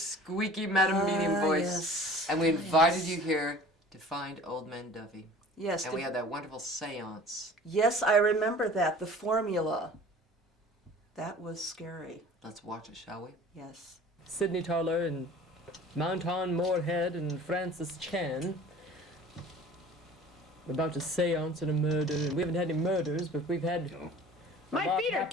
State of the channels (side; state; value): both; normal; correlation 0.45